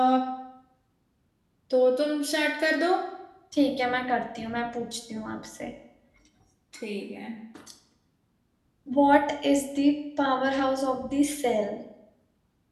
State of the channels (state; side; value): identical; both; correlation 1.00